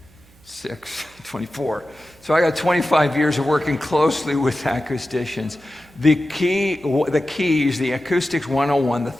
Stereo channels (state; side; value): normal; both; correlation 0.94